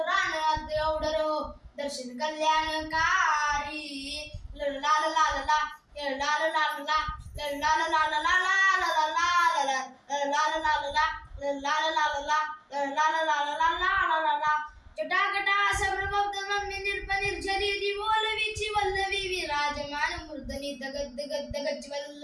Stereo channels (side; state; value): both; identical; correlation 1.00